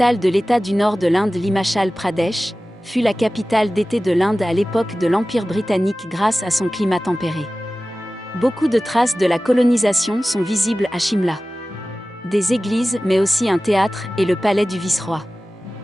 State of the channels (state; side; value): normal; both; correlation 0.96